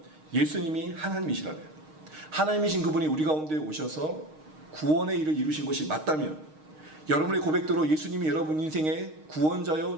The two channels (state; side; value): late; left; 6.4 ms